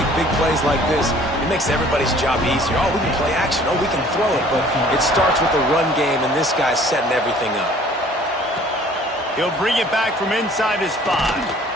big plays like this, it makes everybody's job easier. Oh, we can play action. Oh, we can throw it. But it starts with the run game, and this guy's setting everything up. He'll bring it back from inside his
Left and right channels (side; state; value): both; normal; correlation 0.53